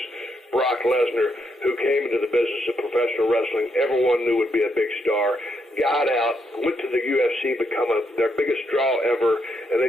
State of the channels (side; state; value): both; normal; correlation 0.78